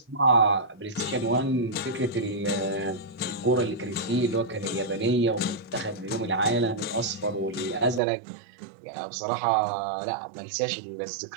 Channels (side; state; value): left; drops out; at 8.0 s